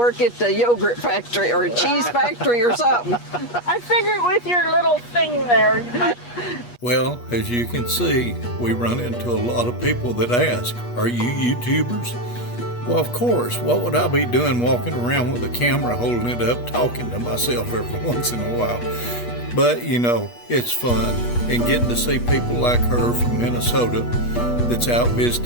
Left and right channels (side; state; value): right; late; 8.3 ms